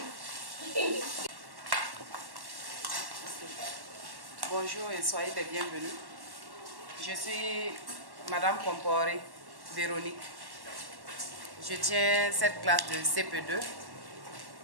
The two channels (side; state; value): left; late; 1.1 ms